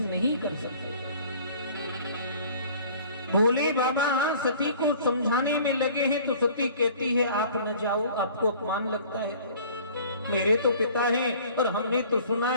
नहीं कर सकते। भोले बाबा सती को समझाने में लगे हैं तो सती कहती है आप न जाओ, आपको अपमान लगता है। मेरे तो पिता हैं और हमने तो सुना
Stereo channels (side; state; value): both; inverted; correlation -0.50